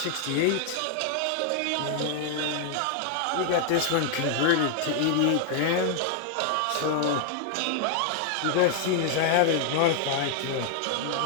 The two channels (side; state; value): both; different; correlation 0.00